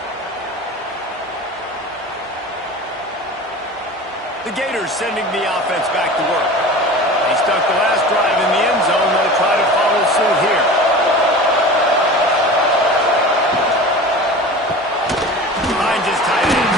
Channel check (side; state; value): both; normal; correlation 0.36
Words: The Gators sending the offense back to work. They stuck the last drive in the end zone. They'll try to follow suit here. Finds his tight end.